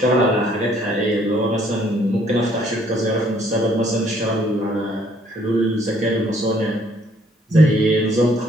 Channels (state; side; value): normal; both; correlation 0.64